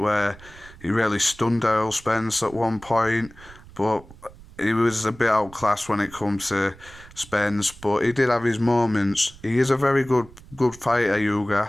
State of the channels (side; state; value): right; noise; rumble, 21 dB below the sound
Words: he really stunned Errol Spence at one point, but he was a bit outclassed when it comes to Spence, but he did have his moments. He is a very good fighter,